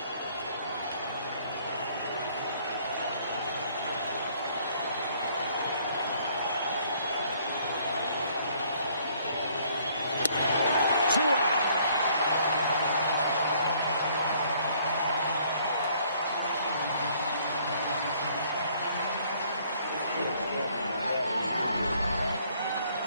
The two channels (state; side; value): inverted; both; correlation -0.62